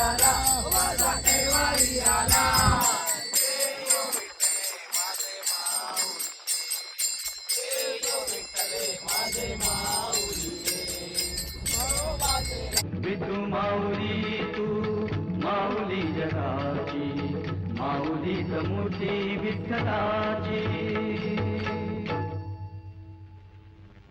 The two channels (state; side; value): identical; both; correlation 1.00